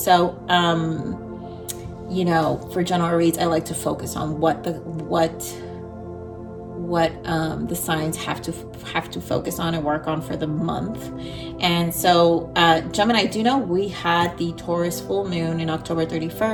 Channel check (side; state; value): both; identical; correlation 1.00